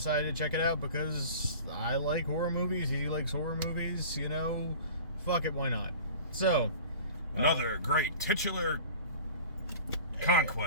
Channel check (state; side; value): inverted; both; correlation -0.41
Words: to check it out because I like horror movies, he likes horror movies, you know, fuck it, why not? So, another great titular